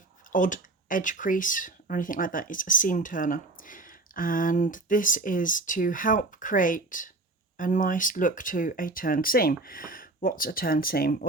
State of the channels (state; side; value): quieter; left; 3.1 dB